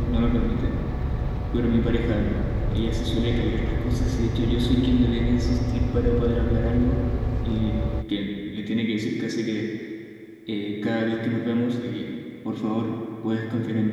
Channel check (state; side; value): identical; both; correlation 1.00